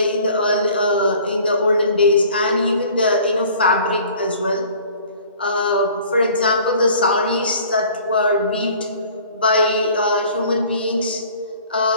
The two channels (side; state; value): both; inverted; correlation -0.50